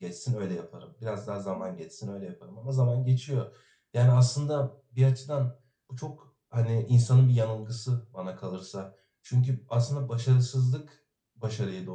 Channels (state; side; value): identical; both; correlation 1.00